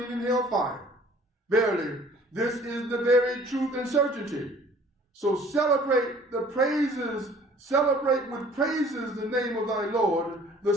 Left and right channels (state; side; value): normal; both; correlation 0.52